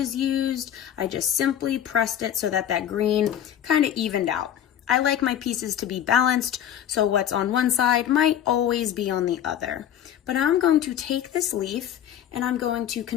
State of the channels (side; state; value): right; quieter; 10.3 dB